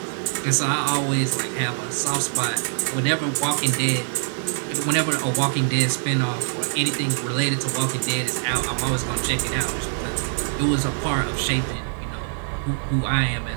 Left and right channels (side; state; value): left; silent; digital silence